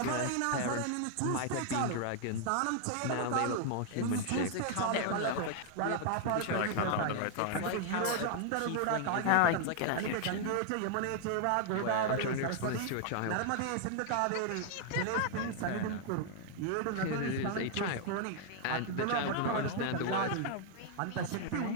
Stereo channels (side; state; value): both; different; correlation 0.00